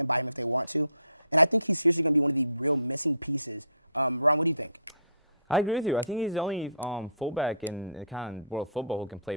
buy him if they want to. And I think he's seriously going to be one of the real missing pieces. Ron, what do you think?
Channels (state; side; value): inverted; both; correlation -0.56